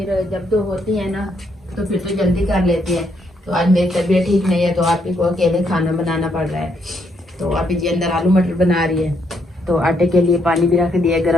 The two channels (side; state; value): both; normal; correlation 0.74